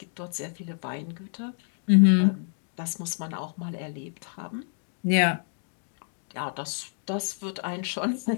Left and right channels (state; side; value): silent; right; 59 dB below the other